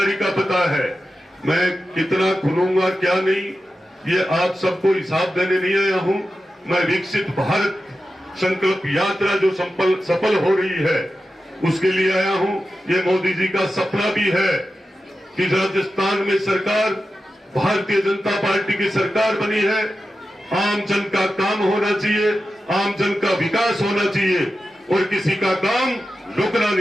का पता है। मैं कितना खुलूंगा क्या नहीं, ये आप सबको हिसाब देने नहीं आया हूं। मैं विकसित भारत संकल्प यात्रा जो सफल हो रही है उसके लिए आया हूं। ये मोदी जी का सपना भी है कि राजस्थान में सरकार भारतीय जनता पार्टी की सरकार बनी है। आम जन का काम होना चाहिए, आम जन का विकास होना चाहिए और किसी का काम रुकना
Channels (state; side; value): normal; both; correlation 0.92